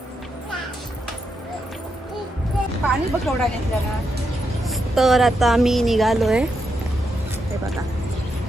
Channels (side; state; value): both; normal; correlation 0.83